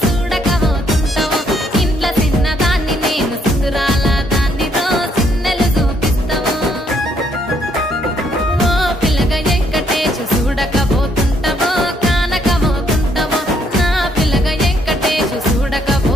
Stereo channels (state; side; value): normal; both; correlation 0.70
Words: చూడకపోతుంటావో ఇంట్లో చిన్నదాన్ని నేను చిత్రాల దాన్నితో చిన్నలు చూపిస్తావో ఓ పిల్లగా వెంకటేశు చూడకపోతుంటావో కానకపోతుంటావో నా పిల్లగా వెంకటేశు